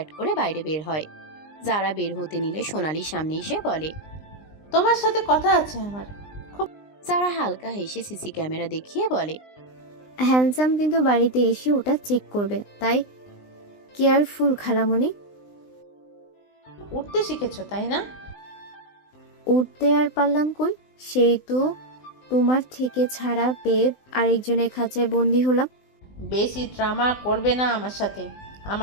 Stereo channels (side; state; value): right; late; 20 ms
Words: করে বাইরে বের হয়। যারা বের হতে নিলে সোনালি সামনে এসে বলে, তোমার সাথে কথা আছে আমার। যারা হালকা হেসে সিসি ক্যামেরা দেখিয়ে বলে, হ্যান্ডসাম কিন্তু বাড়িতে এসে ওটা চেক করবে, তাই কেয়ারফুল খালামণি। উঠতে শিখেছো তাই না? উঠতে আর পারলাম কই, সেই তো তোমার থেকে ছাড়া পেয়ে আরেকজনের খাঁচায় বন্দি হলাম। বেশি ড্রামা করবে না আমার সাথে।